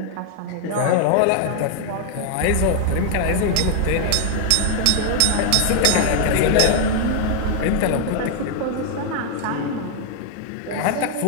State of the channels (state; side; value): different; both; correlation 0.00